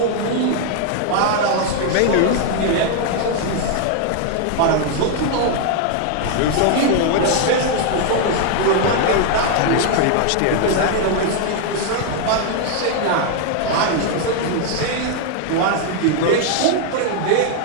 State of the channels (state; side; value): different; both; correlation 0.00